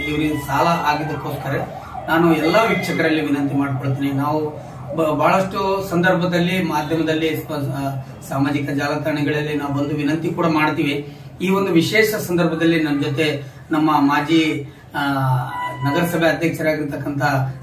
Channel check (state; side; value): identical; both; correlation 1.00